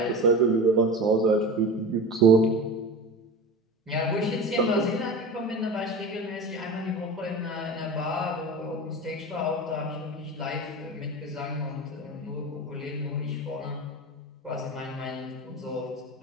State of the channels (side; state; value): both; normal; correlation 0.30